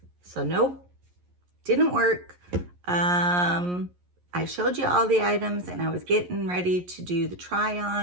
So nope, didn't work. I showed you all the items and I was getting ready to do the try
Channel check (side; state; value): left; late; 11 ms